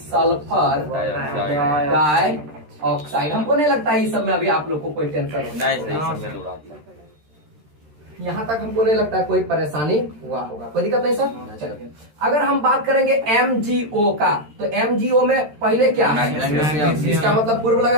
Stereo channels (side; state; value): left; late; 13 ms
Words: डाइऑक्साइड। Die oxide. हमको नहीं लगता है इस सब में अभी आप लोग को कोई टेंशन हो। नहीं सर, इसमें तो उड़ा दिया। यहाँ तक हमको नहीं लगता है कोई परेशानी हुआ होगा, कोई दिक्कत नहीं सर। चलिए, अगर हम बात करेंगे MgO का, तो MgO में पहले क्या है? मैग्नीशियम। इसका मतलब पूर्व